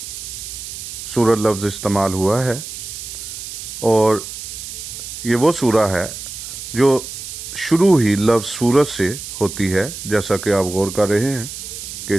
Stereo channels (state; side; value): noise; right; hiss, 9 dB below the sound